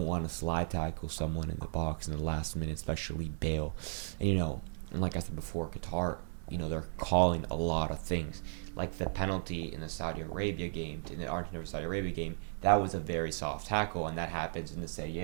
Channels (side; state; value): left; silent; digital silence